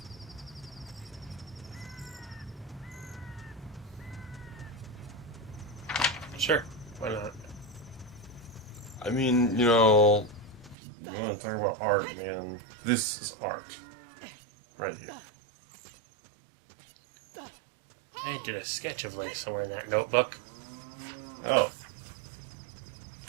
Sure, why not? I mean, you know, you want to talk about art, man. This is art. Right here. I did a sketch of Link somewhere in that notebook. Oh.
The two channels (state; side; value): drops out; left; at 10.8 s